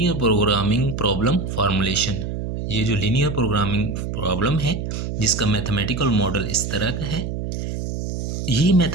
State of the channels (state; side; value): noise; right; hum, 4 dB below the sound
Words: प्रोग्रामिंग प्रॉब्लम फार्मूलेशन। ये जो लीनियर प्रोग्रामिंग प्रॉब्लम है जिसका मैथमेटिकल मॉडल इस तरह का है, ये